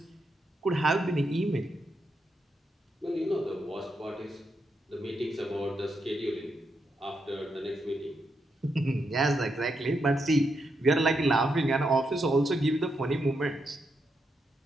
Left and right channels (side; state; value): both; normal; correlation 0.82